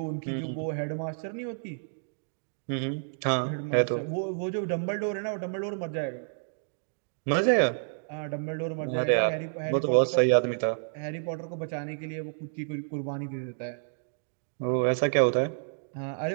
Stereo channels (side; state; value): left; silent; digital silence